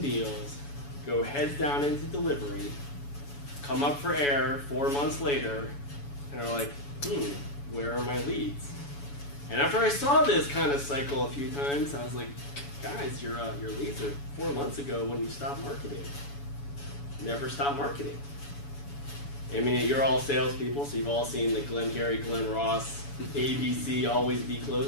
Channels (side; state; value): right; late; 7.1 ms